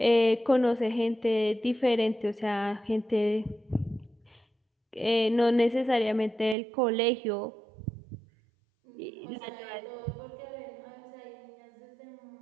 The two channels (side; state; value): left; drops out; at 6.6 s